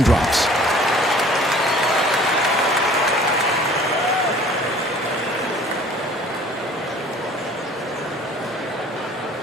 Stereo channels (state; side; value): normal; both; correlation 0.50